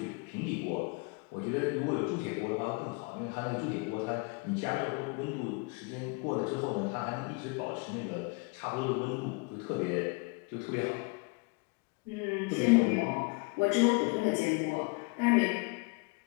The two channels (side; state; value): right; quieter; 29.8 dB